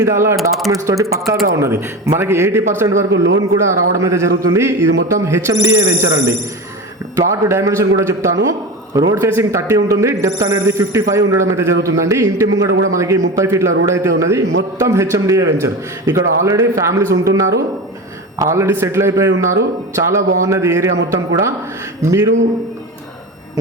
విధాల డాక్యుమెంట్స్ తోటి పక్కాగా ఉన్నది. మనకి 80% వరకు లోన్ కూడా రావడం అయితే జరుగుతుంది. ఇది మొత్తం HMDA వెంచర్ అండి. ప్లాట్ డైమెన్షన్ కూడా చెప్తాను. రోడ్ ఫేసింగ్ 30 ఉంటుంది. డెప్త్ అనేది 55 ఉండడం అయితే జరుగుతుందండి. ఇంటి ముంగడ కూడా మనకి 30 ఫీట్ల రోడ్ అయితే ఉన్నది. మొత్తం HMDA వెంచర్. ఇక్కడ ఆల్రెడీ ఫ్యామిలీస్ ఉంటున్నారు, ఆల్రెడీ సెటిల్ అయిపోయి ఉన్నారు. చాలా బాగున్నది ఏరియా మొత్తం కూడా. మీరు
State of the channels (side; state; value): both; normal; correlation 0.26